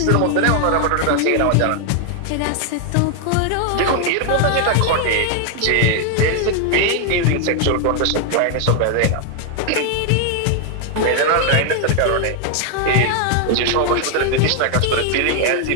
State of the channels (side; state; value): both; different; correlation 0.00